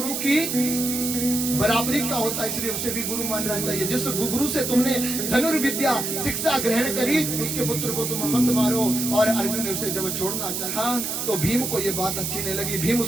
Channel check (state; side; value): noise; right; hiss, 3 dB below the sound